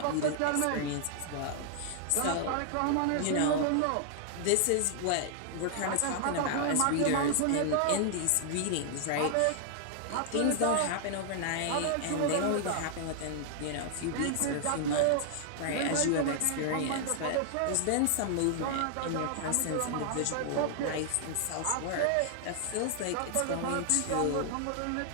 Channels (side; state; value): both; different; correlation 0.00